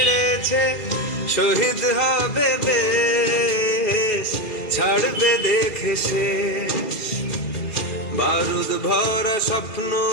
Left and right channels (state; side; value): late; right; 2.5 ms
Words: শহীদ হবে দেশ, ছাড়বে দেখে শেষ। বারুদ ভরা স্বপ্ন